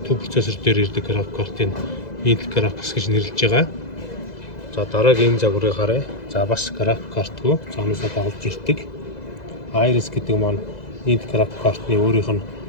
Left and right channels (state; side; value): late; right; 2.0 ms